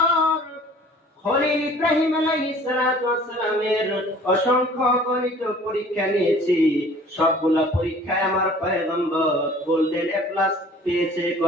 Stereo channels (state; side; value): normal; both; correlation 0.49